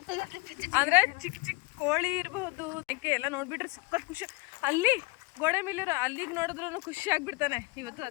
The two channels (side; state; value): right; quieter; 26.8 dB